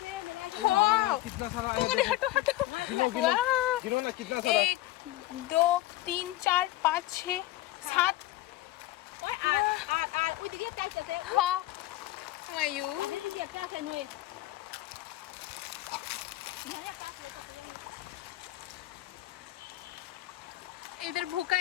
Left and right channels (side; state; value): right; quieter; 16.3 dB